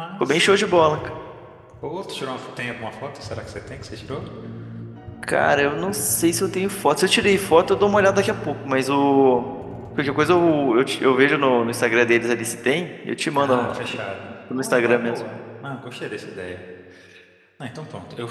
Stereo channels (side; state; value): both; identical; correlation 1.00